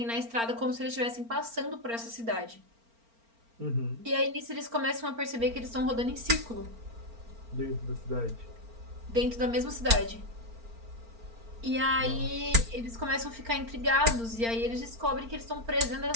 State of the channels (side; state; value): left; late; 4.4 ms